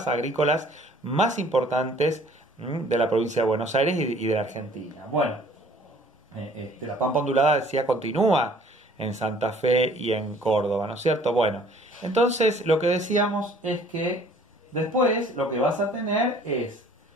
agrícolas más importantes de la provincia de Buenos Aires y de la Argentina. Bueno, la pampa ondulada, decía, continúa en Santa Fe y en Córdoba, ¿no es cierto? Bueno, entonces lo que decíamos es que después lo que vas a tener es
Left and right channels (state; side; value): normal; both; correlation 0.55